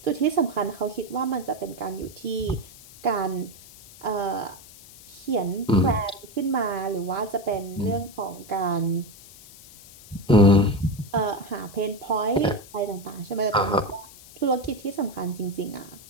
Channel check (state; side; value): noise; left; hiss, 20 dB below the sound